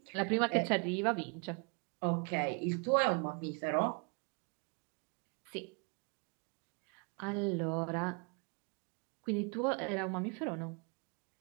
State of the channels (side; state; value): left; quieter; 35.4 dB